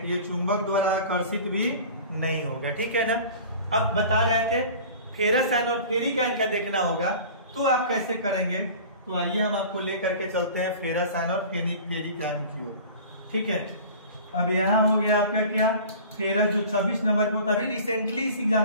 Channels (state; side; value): inverted; both; correlation -0.41